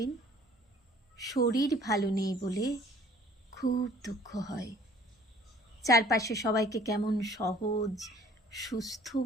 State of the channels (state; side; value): normal; both; correlation 0.54